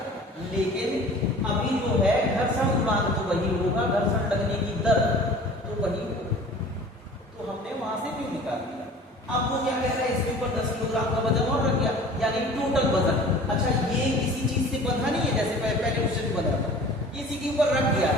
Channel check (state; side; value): normal; both; correlation 0.44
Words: लेकिन अभी जो है घर्षण गुणांक तो वही होगा, घर्षण लगने की दर तो वही होगा। तो हमने वहां से क्यों निकाल दिया। अब वो क्या कह रहा है? इसके ऊपर 10 किलोग्राम का वजन और रख दिया, यानी टोटल वजन। अच्छा ये किसी चीज से बंधा नहीं है, जैसे पहले क्वेश्चन में बंधा था, इसी के ऊपर रख दिया